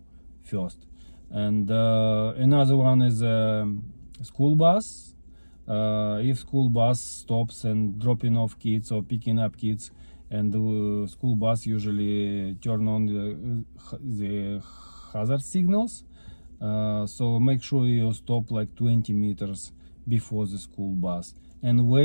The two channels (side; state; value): both; inverted; correlation -1.00